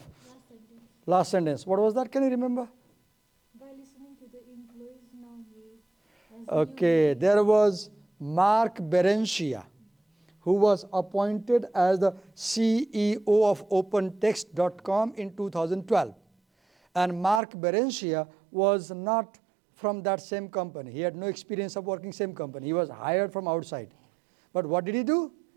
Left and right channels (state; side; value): drops out; left; at 17.4 s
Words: Last sentence. What was that? Can you remember? By listening to the employees, now he has Okay. There was Mark Berenshia, who was appointed as the CEO of OpenText.com in 2012. And Mark Berenshia was not from that same company. He had no experience of working same company. He was hired from outside. But what did he do?